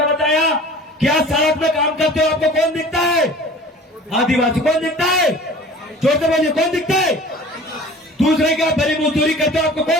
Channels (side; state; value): both; normal; correlation 0.43